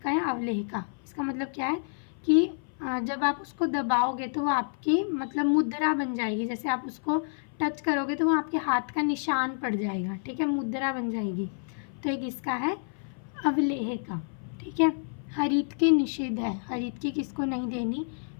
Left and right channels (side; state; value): right; silent; 56 dB below the other